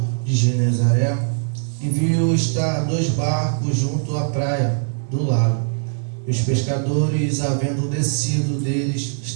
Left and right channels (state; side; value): silent; left; 65 dB below the other